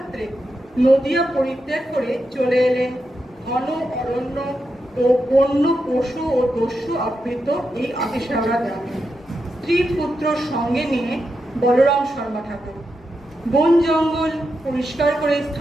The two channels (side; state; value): both; normal; correlation 0.86